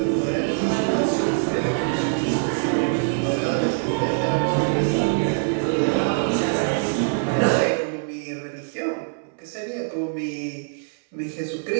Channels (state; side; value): silent; left; 63 dB below the other